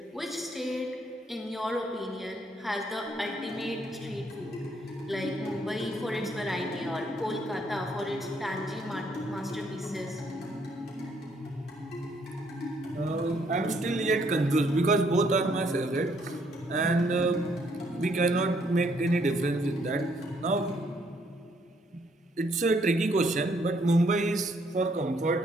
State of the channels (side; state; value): both; normal; correlation 0.69